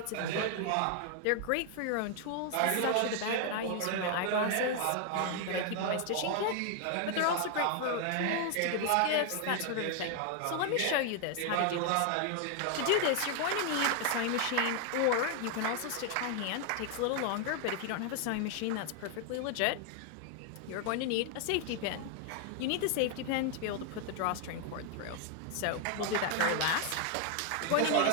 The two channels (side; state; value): both; different; correlation 0.00